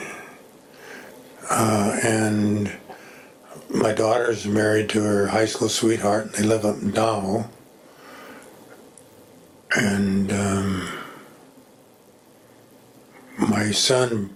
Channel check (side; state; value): both; identical; correlation 1.00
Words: and my daughter's married to her high school sweetheart, and they live up in Tahoe, and my son